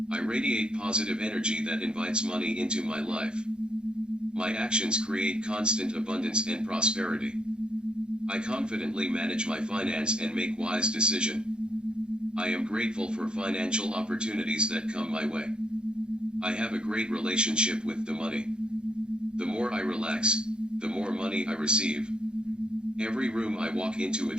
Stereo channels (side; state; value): left; late; 0.049 ms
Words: I radiate positive energy that invites money into my life. My actions create constant abundance and prosperity. I confidently manage my finance and make wise decisions. I am grateful for financial opportunities that come my way. I have a great relationship with the money. The more I relax, the more money I receive. Every room I walk into